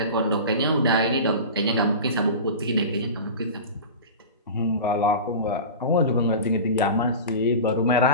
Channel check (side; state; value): both; inverted; correlation -0.31